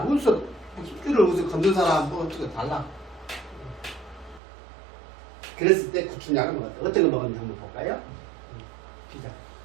무슨 힘줄을 우서 건든 사람 뭐 어떻게 달라. 그랬을 때 구충약을 먹었다. 어떤 거 먹었는지 한번 볼까요? 피자.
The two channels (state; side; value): drops out; left; at 4.4 s